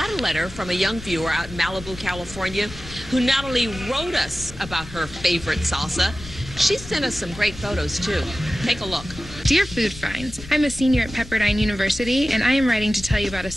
a letter from a young viewer out in Malibu, California, who not only wrote us about her favorite salsa, she sent us some great photos, too. Take a look. Dear Food Finds, I'm a senior at Pepperdine University, and I am writing to tell you about a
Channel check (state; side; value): noise; left; rumble, 15 dB below the sound